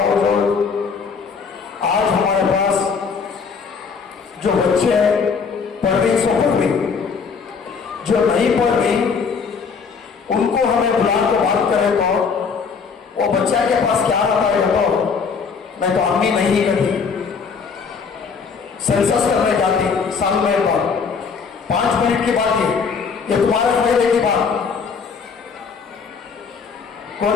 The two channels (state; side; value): quieter; right; 5.6 dB